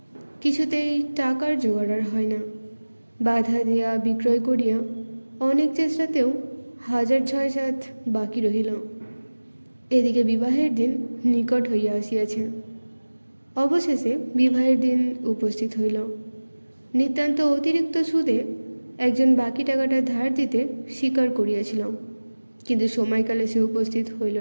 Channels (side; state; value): both; inverted; correlation -1.00